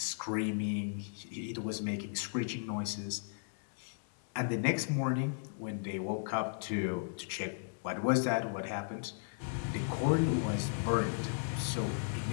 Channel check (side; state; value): right; silent; digital silence